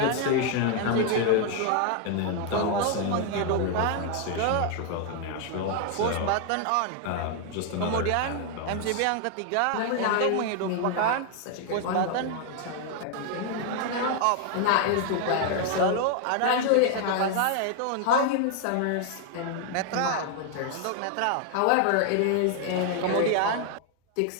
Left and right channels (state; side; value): different; both; correlation 0.00